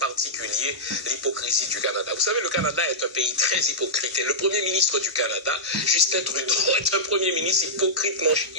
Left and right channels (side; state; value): both; normal; correlation -0.10